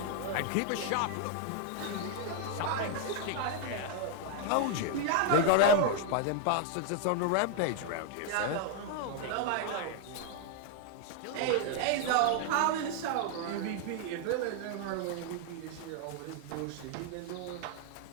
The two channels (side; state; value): both; different; correlation 0.00